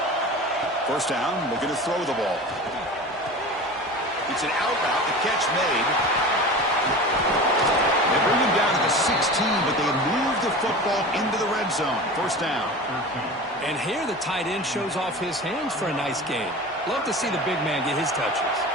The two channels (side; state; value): both; normal; correlation 0.33